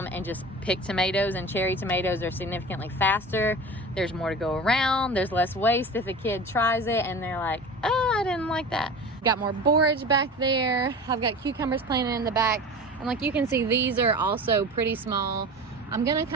and just pick tomatoes, and cherry tomatoes are significantly faster. There's more to go around. There's less waste if a kid tries it and they're like, oh, I didn't like that. Got more borage back there. I've got cucumbers planted in the back. And like you can see, these are also pretty small. I'm gonna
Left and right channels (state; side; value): normal; both; correlation 0.34